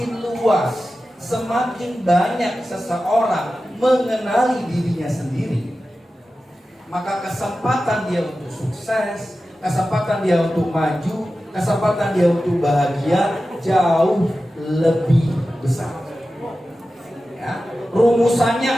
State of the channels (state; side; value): normal; both; correlation 0.94